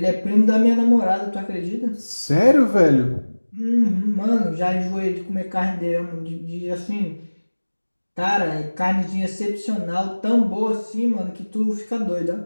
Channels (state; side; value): inverted; both; correlation -1.00